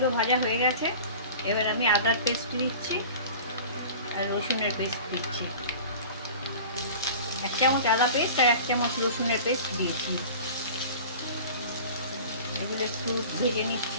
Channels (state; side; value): inverted; both; correlation -0.39